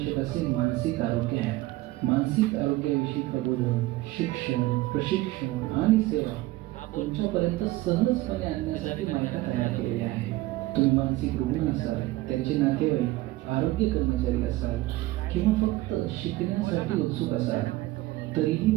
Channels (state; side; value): quieter; left; 18.1 dB